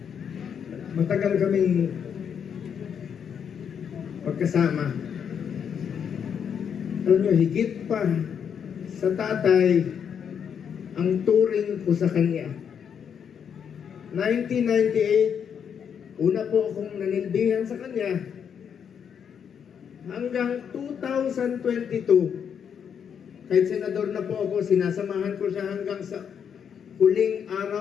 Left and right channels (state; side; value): quieter; right; 7.7 dB